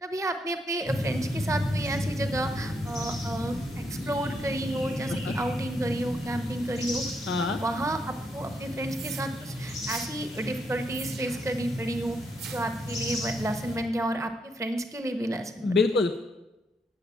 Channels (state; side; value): normal; both; correlation 0.77